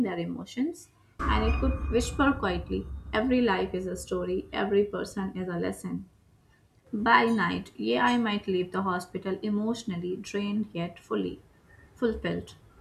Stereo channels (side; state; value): both; identical; correlation 1.00